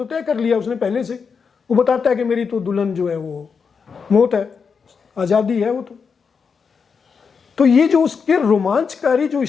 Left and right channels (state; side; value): quieter; right; 5.8 dB